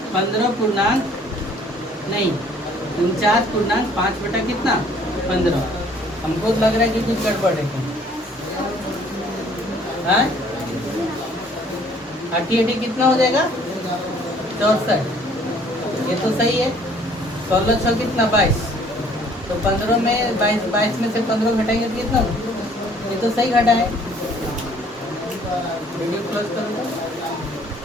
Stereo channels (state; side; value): normal; both; correlation 0.58